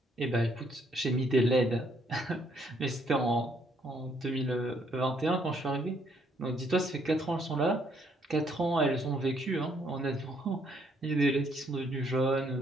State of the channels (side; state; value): both; normal; correlation 0.69